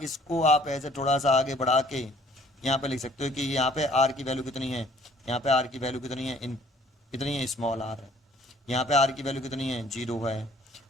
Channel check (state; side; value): normal; both; correlation 0.57